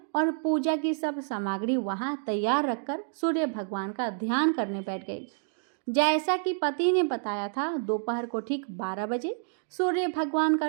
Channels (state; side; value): silent; left; 59 dB below the other